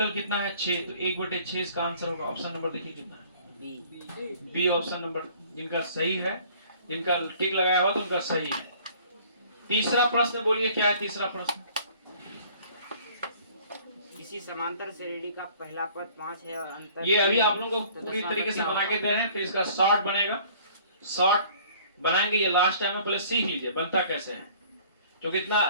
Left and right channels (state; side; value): inverted; both; correlation -0.53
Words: कितना है? 6। तो 1/6 इसका आंसर होगा। ऑप्शन नंबर देखिए कितना है? बी ऑप्शन नंबर जिनका सही है, जिनका टिक लगाया हुआ तो उनका सही है। तीसरा प्रश्न बोलिए, क्या है तीसरा प्रश्न? किसी समांतर श्रेणी का पहला पद 5 है और अंतर। ये अभी आप लोगों को पूरी तरीके से बना के दे रहे हैं, फिर इसका शॉर्ट बनेगा। शॉर्ट बनाएंगे, ये लास्ट टाइम में पहले सीख लीजिए बनता कैसे है। क्योंकि इतना